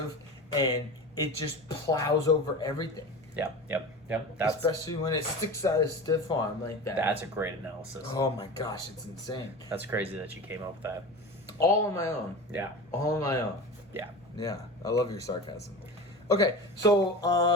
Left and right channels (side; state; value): both; normal; correlation 0.30